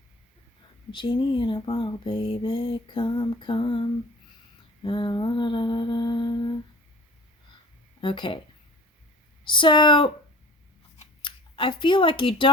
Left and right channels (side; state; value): both; normal; correlation 0.43